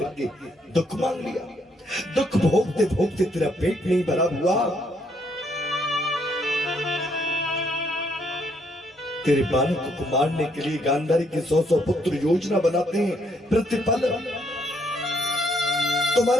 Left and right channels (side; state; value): both; normal; correlation 0.71